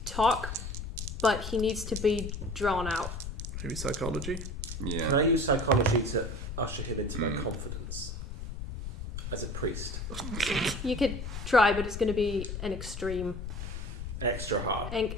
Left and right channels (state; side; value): noise; left; rumble, 6 dB below the sound